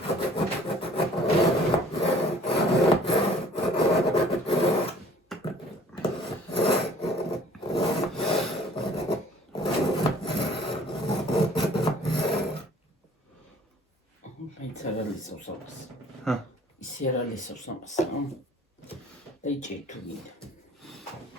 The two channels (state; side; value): normal; both; correlation 0.53